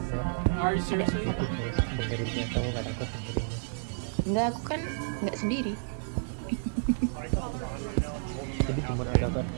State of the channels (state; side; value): silent; left; digital silence